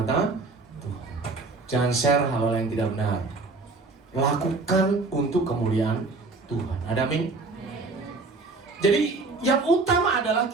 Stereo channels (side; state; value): left; quieter; 3.6 dB